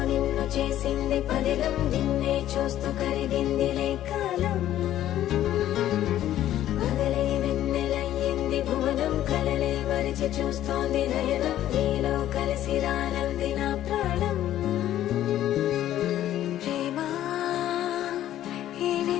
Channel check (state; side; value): quieter; right; 12.5 dB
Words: నిన్ను చేసింది పదిలం నిన్నే చూస్తూ కరిగిందిలే కాలం పగలే వెన్నెలయ్యింది భువనం కలలే మరిచి చూస్తోంది నయనం నీలో కలిసి రానంది నా ప్రాణం ప్రేమా ఈ